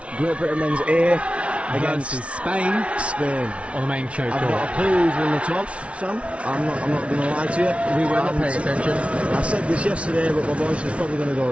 Great Britain men's A against Spain on the main show. I've got a clue who's won the toss, Sam. I'm not going to lie to you. We were not paying attention. I said this yesterday, but my voice is probably going to go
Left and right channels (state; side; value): late; left; 0.062 ms